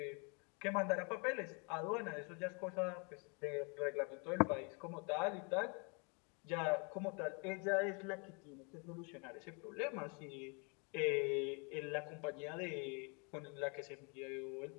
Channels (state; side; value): quieter; right; 34.3 dB